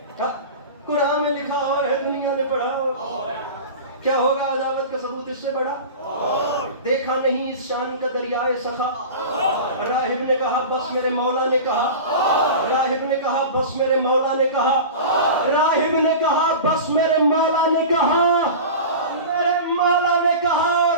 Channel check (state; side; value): inverted; both; correlation -0.32